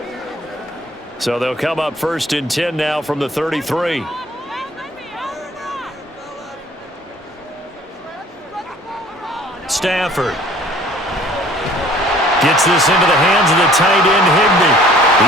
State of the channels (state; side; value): normal; both; correlation 0.53